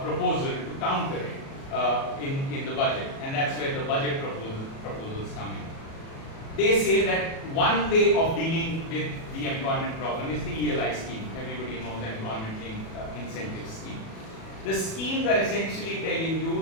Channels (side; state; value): right; late; 37 ms